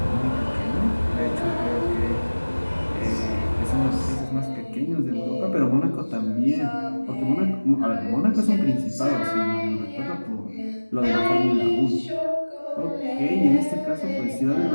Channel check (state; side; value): inverted; both; correlation -1.00